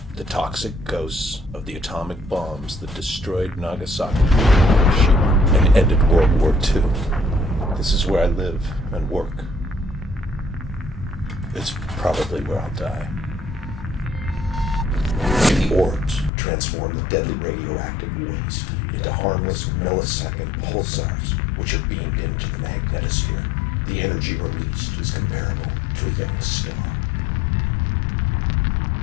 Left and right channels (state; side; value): drops out; right; at 16.3 s